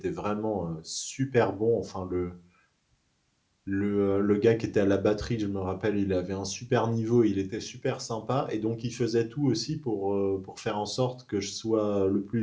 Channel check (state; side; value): identical; both; correlation 1.00